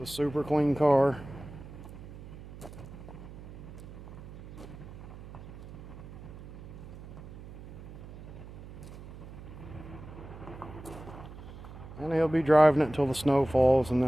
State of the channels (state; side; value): noise; right; hum, 14 dB below the sound